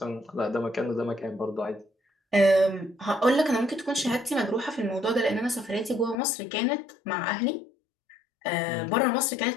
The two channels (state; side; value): drops out; right; at 6.2 s